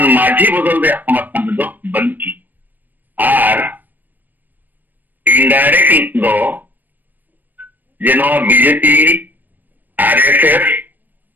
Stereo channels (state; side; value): late; left; 0.088 ms